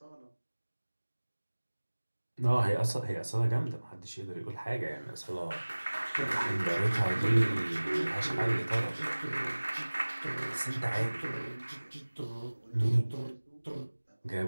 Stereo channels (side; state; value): both; inverted; correlation -1.00